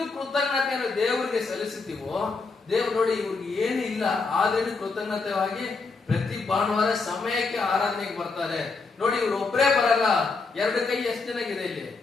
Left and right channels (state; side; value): quieter; right; 4.2 dB